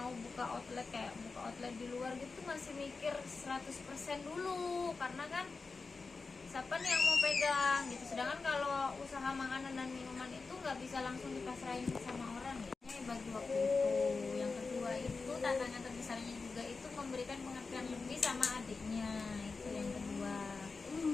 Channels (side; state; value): right; quieter; 4.3 dB